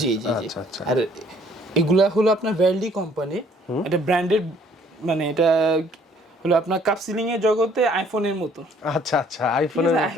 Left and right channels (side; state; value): both; normal; correlation 0.60